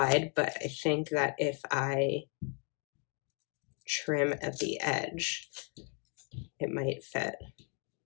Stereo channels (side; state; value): right; quieter; 37.8 dB